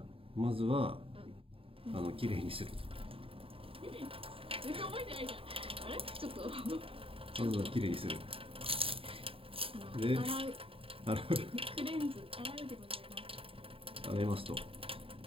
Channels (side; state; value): left; late; 0.27 ms